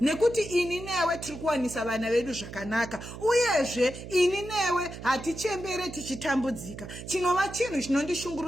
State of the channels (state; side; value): noise; right; hum, 11 dB below the sound